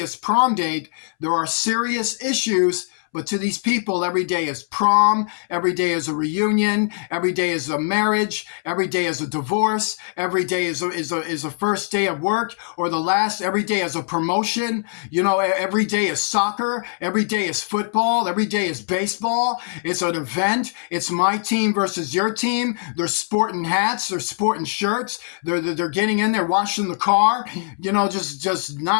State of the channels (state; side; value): silent; right; 64 dB below the other